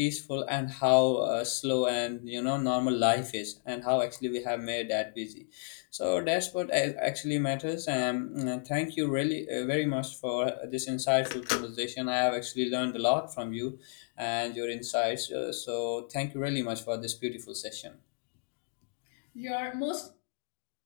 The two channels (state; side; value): silent; right; digital silence